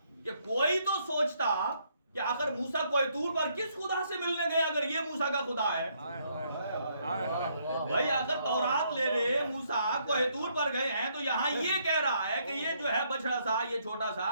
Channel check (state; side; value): inverted; both; correlation -0.71